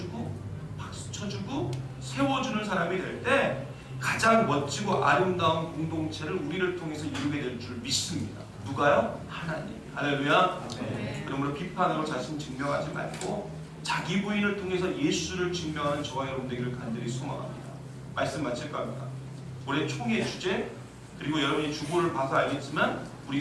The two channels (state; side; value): identical; both; correlation 1.00